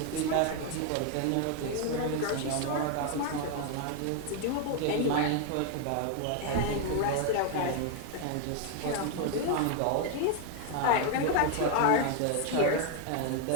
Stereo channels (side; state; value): both; different; correlation 0.01